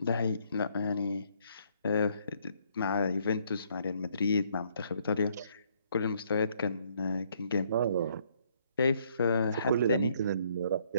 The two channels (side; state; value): both; inverted; correlation -0.68